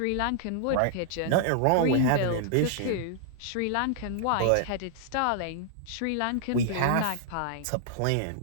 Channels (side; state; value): both; different; correlation -0.01